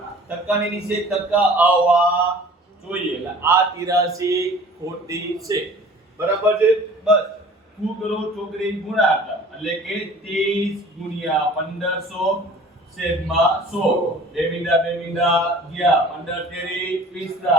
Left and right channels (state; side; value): normal; both; correlation 0.47